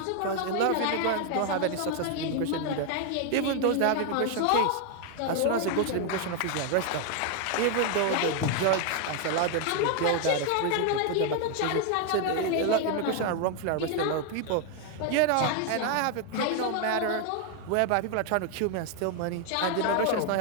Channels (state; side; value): different; both; correlation 0.01